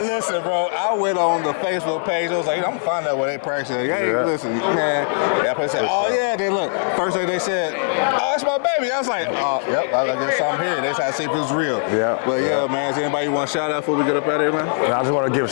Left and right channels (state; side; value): silent; right; digital silence